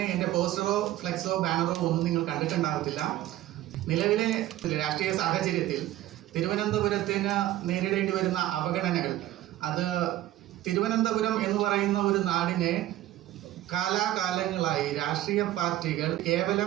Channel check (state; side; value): quieter; left; 14.5 dB